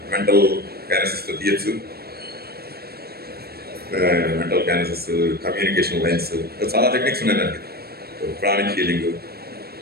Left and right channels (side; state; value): left; late; 0.46 ms